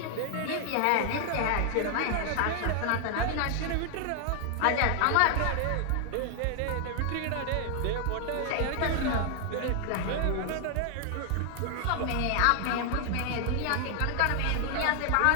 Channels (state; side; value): different; both; correlation 0.00